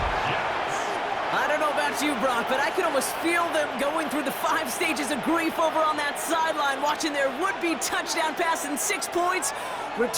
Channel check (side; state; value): both; identical; correlation 1.00